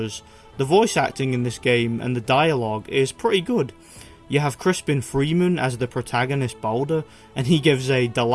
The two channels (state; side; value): identical; both; correlation 1.00